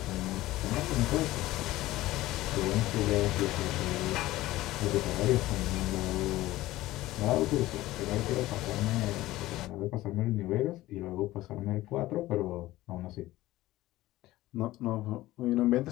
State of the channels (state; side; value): quieter; right; 16.9 dB